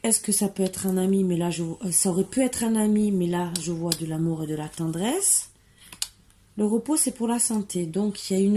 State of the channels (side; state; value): both; identical; correlation 1.00